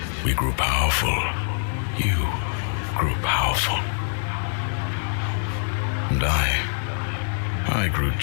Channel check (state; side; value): silent; right; digital silence